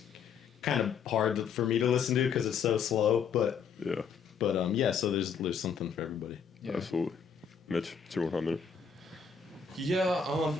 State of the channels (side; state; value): right; quieter; 6.5 dB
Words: kind of hard for me to listen to because it's so slow. But so there's something for everybody. Yeah. Absolutely. Mitch, it's your 1 minute. Yeah,